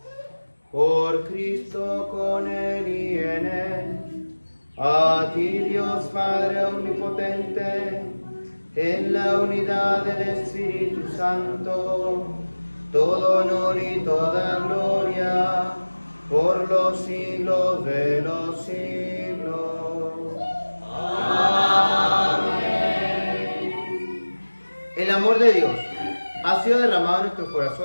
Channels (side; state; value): both; inverted; correlation -1.00